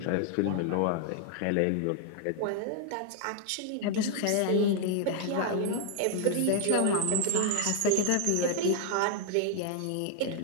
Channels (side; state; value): both; different; correlation 0.00